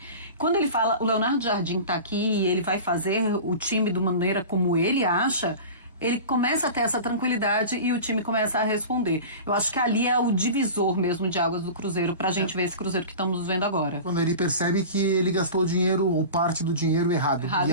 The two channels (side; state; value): both; inverted; correlation -0.34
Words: Quando ele fala, o Leonardo Jardim está aqui e ele vai fazer o time de maneira como ele acha, ele começa a ter essa tranquilidade e o time começa a responder. Eu acho que ali é o divisor mesmo de águas do Cruzeiro, pra gente ver esse Cruzeiro que estamos vendo agora. Quando ele percebe que ele gastou o dinheiro ou parte do dinheiro errado. E